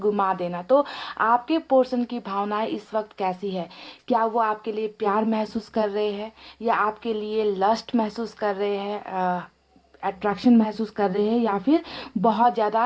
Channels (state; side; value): identical; both; correlation 1.00